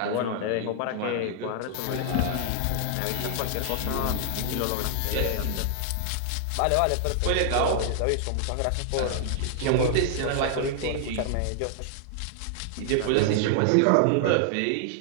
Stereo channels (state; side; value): different; both; correlation -0.01